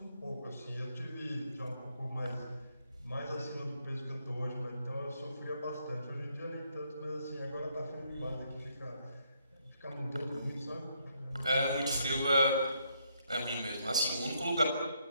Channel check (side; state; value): both; inverted; correlation -0.73